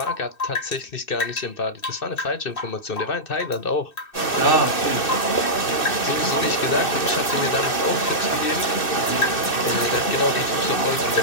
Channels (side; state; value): right; late; 2.6 ms